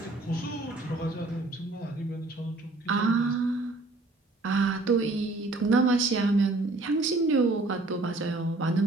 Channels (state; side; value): quieter; left; 3.1 dB